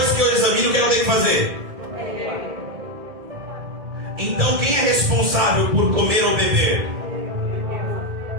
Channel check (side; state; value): left; late; 1.8 ms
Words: que eu examino, o que eu tenho que fazer? Então quem é responsável por comer ou beber?